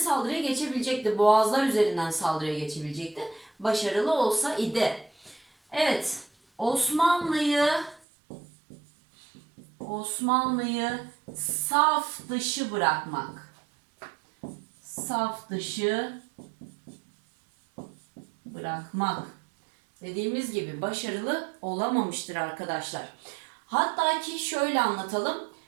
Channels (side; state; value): left; drops out; at 8.0 s